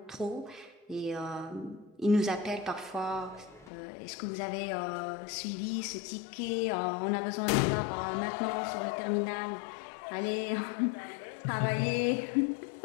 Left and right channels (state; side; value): drops out; right; at 3.7 s